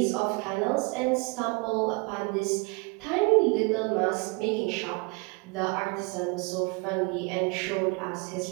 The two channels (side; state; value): left; quieter; 29.0 dB